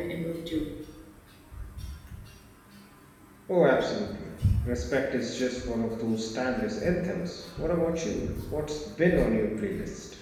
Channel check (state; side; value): identical; both; correlation 1.00